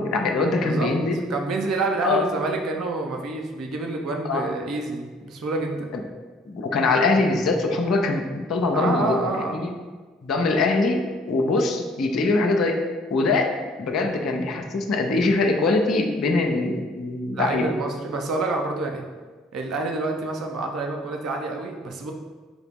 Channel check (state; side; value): normal; both; correlation 0.56